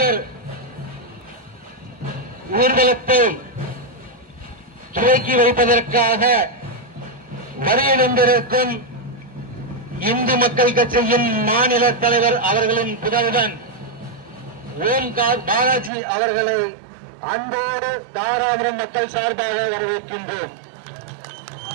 ஊர்வலத்தை துவக்கி வைப்பதற்காக வருகின்றிருக்கும் இந்து மக்கள் கட்சியின் மாநில தலைவர் அவர்களின் புதல்வன் ஓம்கார் பாலாஜி அவர்களை அன்போடு தாராபுரம் மக்கள் சார்பாக வரவேற்கின்றோம்.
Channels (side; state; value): left; drops out; at 15.9 s